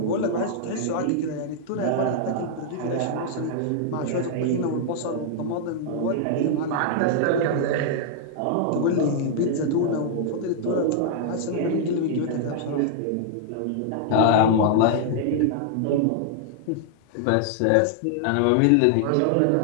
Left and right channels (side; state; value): both; different; correlation -0.01